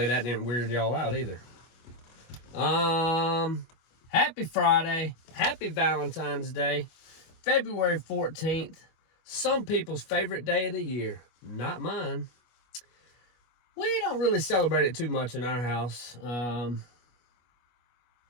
that didn't weird y'all out either. Happy Friday. Happy Valentine's Day. February 14th. Some people's favorite day of the year. Not mine. We don't really celebrate it too much in our house. My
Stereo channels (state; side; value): late; right; 25 ms